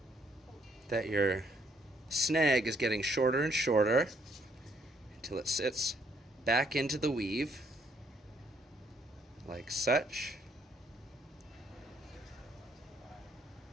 that your snag is getting shorter and shorter until it sits back into the weave like such.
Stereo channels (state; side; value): normal; both; correlation 0.68